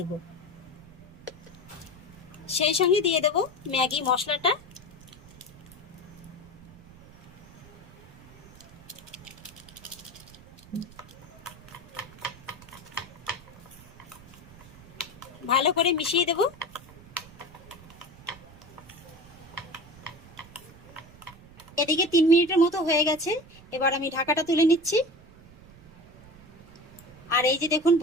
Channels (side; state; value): right; noise; rumble, 21 dB below the sound